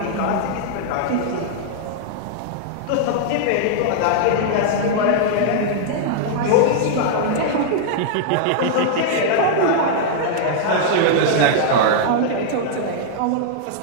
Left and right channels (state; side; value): different; both; correlation -0.01